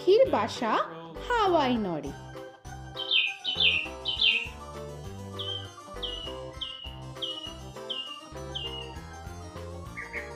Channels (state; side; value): identical; both; correlation 1.00